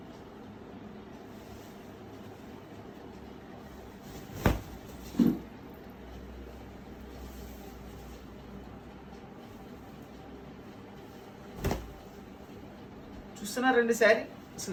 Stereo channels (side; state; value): both; identical; correlation 1.00